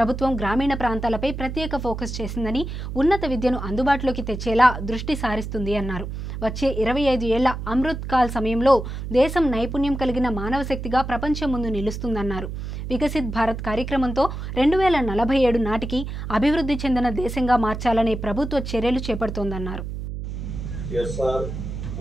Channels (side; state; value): right; noise; hum, 6 dB below the sound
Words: గ్రామీణ ప్రాంతాలపై ప్రత్యేక ఫోకస్ చేసిందని ఉన్నత విద్యను అందుబాటులోకి తెచ్చేలా దృష్టి సారిస్తుంది అన్నారు వచ్చే 25 ఏళ్ల అమృత్ కాల్ సమయంలో దేశం నైపుణ్యం కలిగిన మానవ శక్తిగా ప్రపంచం ముందు నిలుస్తుందన్నారు వికసిత్ భారత్ కార్యక్రమంతో 2047 నాటికి అభివృద్ధి చెందిన దేశంగా మార్చాలనే ప్రభుత్వ చర్యలు చేపడుతోందన్నారు. SR